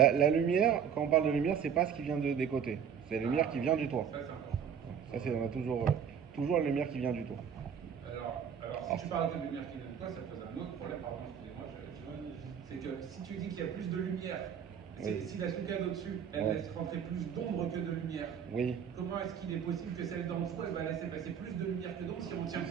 La lumière, quand on parle de lumière, c'est pas ce qui vient des côtés. C'est la lumière qui vient du toit. Ça c'est important. Ça, c'est on a toujours la lumière qui vient du toit. Alors si tu parles de lumière qui vient de toi, ça pose un autre problème. Pardon, excusez-moi. C'est que si tu dis qu'il y a plus de lumière, Oui. si la souka d'au-dessus, elle Ouais. laisse rentrer plus d'ombre que de lumière, Oui. comment est-ce qu'il est possible que celle d'en dessous, elle va laisser passer plus de lumière que d'ombre si on tient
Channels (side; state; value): left; quieter; 7.8 dB